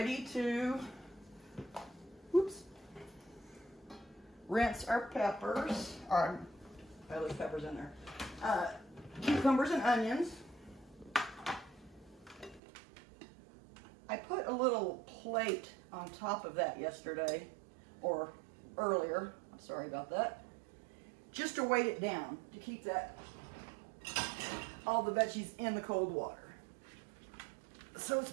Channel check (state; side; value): drops out; left; at 12.6 s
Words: to rinse our peppers. I left peppers in there. Cucumbers and onions. I put a little plate on top of that yesterday, or earlier. I'm sorry about that. Just to weight it down, to keep all the veggies in the cold water. So it's